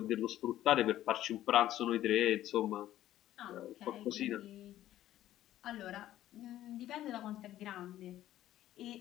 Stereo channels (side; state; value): right; quieter; 13.3 dB